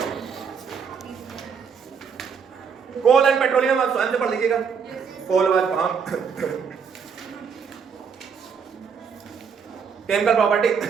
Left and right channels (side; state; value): left; quieter; 6.4 dB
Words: कोल एंड पेट्रोलियम आप स्वयं से पढ़ लीजिएगा, कोल व फार्म केमिकल प्रॉपर्टी,